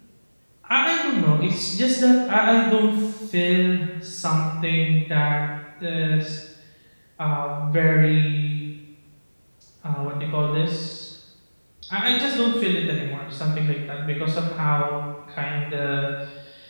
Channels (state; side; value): inverted; both; correlation -1.00